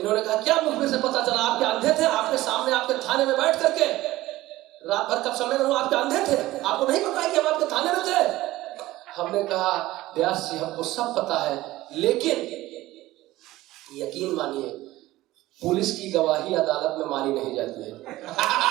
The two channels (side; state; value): left; quieter; 17.0 dB